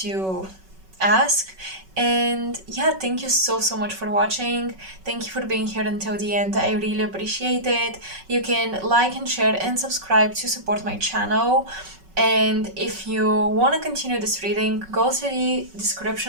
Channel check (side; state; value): left; late; 5.3 ms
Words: ask. And yeah, thank you so much for watching. Thank you for being here until the end. I really appreciate it. You can like and share and subscribe to support my channel. And if you want to continue this reading, go to the